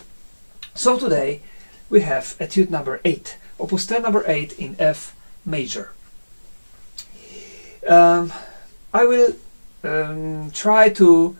So today we have Etude number 8, Opus 10 number 8 in F major. I will try to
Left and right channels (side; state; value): both; inverted; correlation -1.00